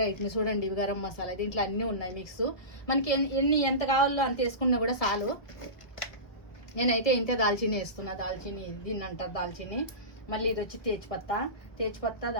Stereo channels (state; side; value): late; right; 1.3 ms